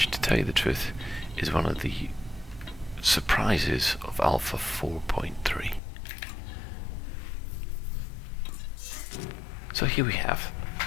to tell you the truth, is one of the surprises of Alpha 4.3. So here we have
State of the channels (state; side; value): drops out; right; at 5.8 s